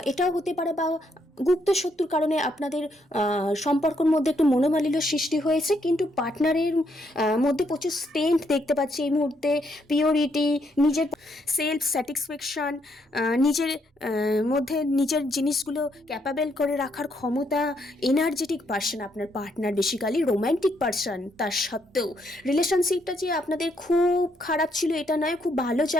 এটাও হতে পারে, বা গুপ্ত শত্রুর কারণে আপনাদের সম্পর্কের মধ্যে একটু মনোমালিন্য সৃষ্টি হয়েছে। কিন্তু পার্টনারের মধ্যে প্রচুর স্ট্রেংথ দেখতে পাচ্ছি এই মুহূর্তে, পিওরিটি, নিজের সেলফ স্যাটিসফ্যাকশান, নিজের মধ্যে নিজের জিনিসগুলো ক্যাপাবেল করে রাখার ক্ষমতা, এনার্জেটিক পার্সন আপনার পার্টনার, বেসিক্যালি রোম্যান্টিক পার্সন। তার সত্ত্বেও রিলেশনশিপটা যে আপনাদের খুব খারাপ ছিল এটা নয়, খুব ভালো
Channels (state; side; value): normal; both; correlation 0.74